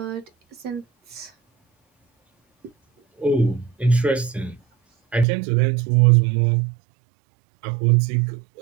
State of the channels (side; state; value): left; drops out; at 5.2 s